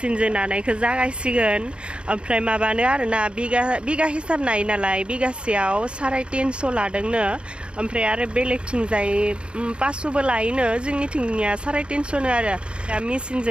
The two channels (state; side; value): late; left; 0.056 ms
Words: नानायखौ जागायसिगोन ओमफ्राय माबानो आरोना बिगा हिसाब नायो नालाय बिगासेयाव 350 लादोंनो ओमफ्राय आरो बेलेगथिंजाय 500बो लायोनो जोंनिथिंनिया 350नो आरो दा